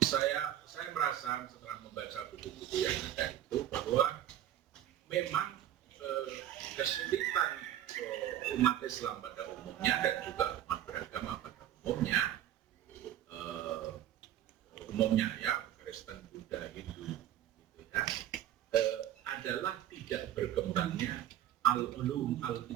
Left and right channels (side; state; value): left; quieter; 11.7 dB